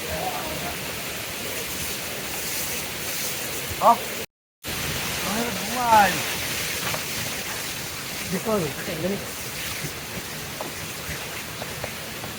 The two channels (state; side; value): identical; both; correlation 1.00